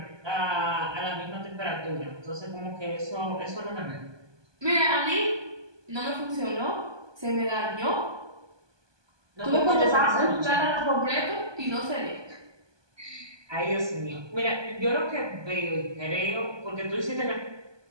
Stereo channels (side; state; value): left; late; 1.2 ms